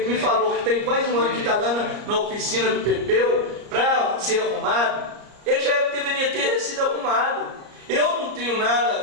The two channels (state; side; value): late; left; 34 ms